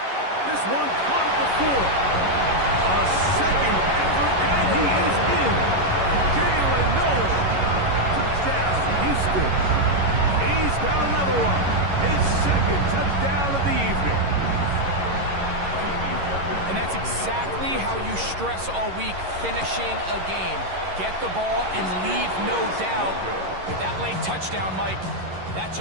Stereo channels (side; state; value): left; late; 11 ms